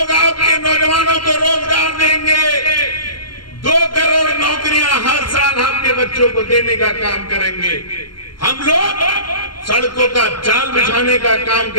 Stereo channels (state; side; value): late; right; 0.72 ms